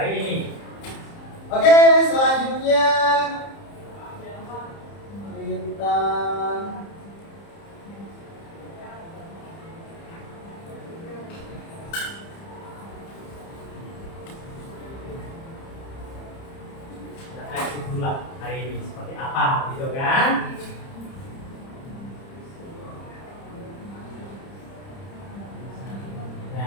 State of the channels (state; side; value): late; right; 30 ms